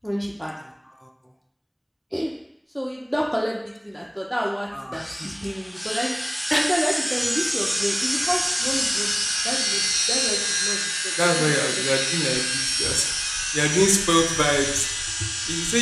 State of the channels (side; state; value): both; identical; correlation 1.00